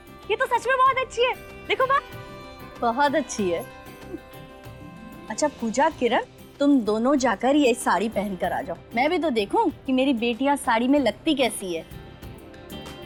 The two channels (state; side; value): identical; both; correlation 1.00